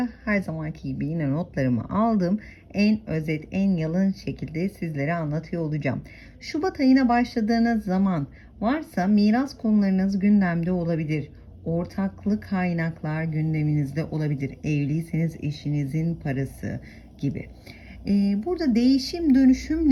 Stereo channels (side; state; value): both; identical; correlation 1.00